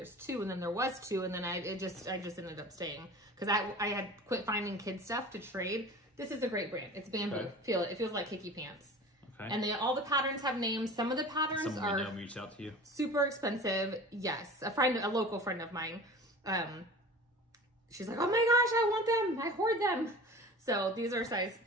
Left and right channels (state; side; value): normal; both; correlation 0.38